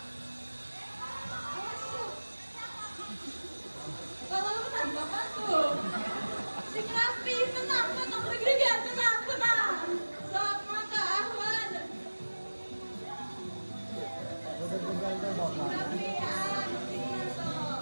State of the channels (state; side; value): inverted; both; correlation -1.00